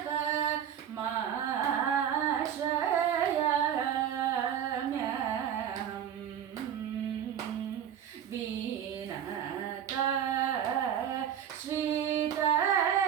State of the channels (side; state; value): left; quieter; 9.3 dB